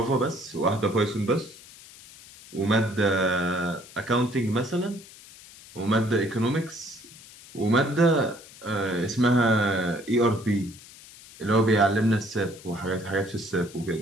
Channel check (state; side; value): noise; left; hiss, 20 dB below the sound